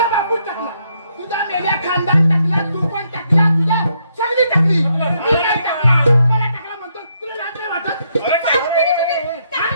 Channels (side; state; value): both; inverted; correlation -0.75